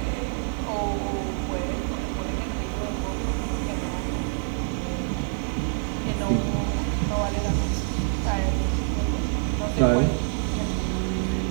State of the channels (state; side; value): silent; left; 56 dB below the other